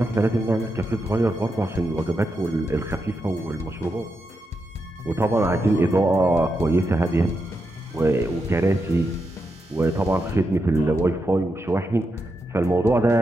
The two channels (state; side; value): normal; both; correlation 0.85